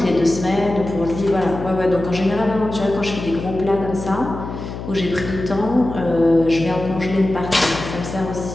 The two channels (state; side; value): noise; left; hum, 9 dB below the sound